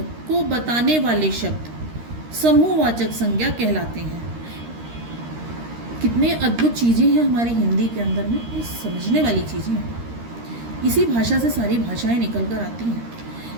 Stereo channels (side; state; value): left; late; 13 ms